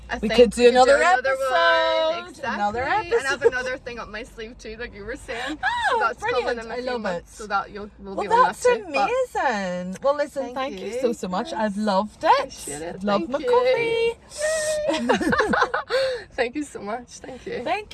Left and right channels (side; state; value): both; identical; correlation 1.00